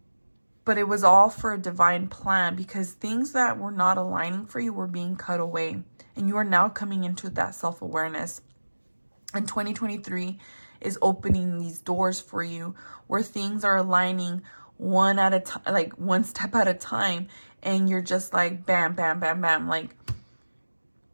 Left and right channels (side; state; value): both; inverted; correlation -1.00